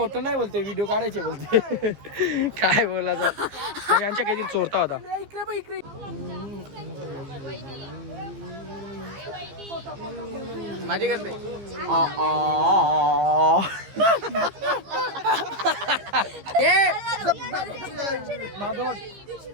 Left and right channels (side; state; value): left; late; 15 ms